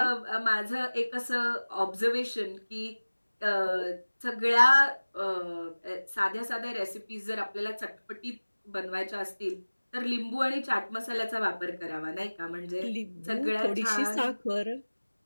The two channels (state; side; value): inverted; both; correlation -1.00